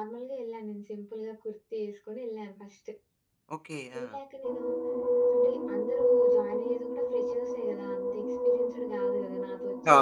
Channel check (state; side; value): identical; both; correlation 1.00